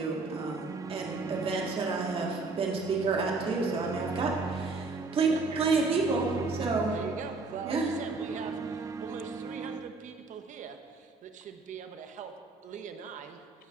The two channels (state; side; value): quieter; left; 3.8 dB